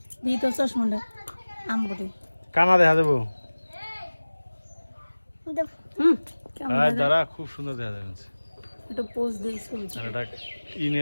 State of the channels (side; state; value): both; inverted; correlation -1.00